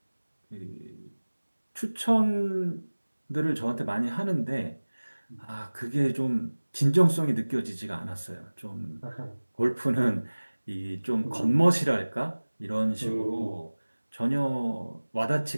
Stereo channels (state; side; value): inverted; both; correlation -1.00